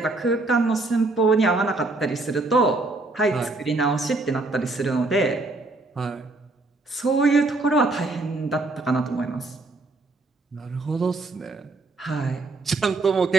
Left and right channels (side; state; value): left; quieter; 3.2 dB